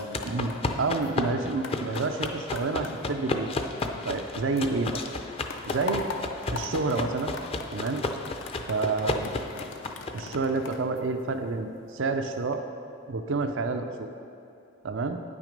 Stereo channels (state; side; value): normal; both; correlation 0.18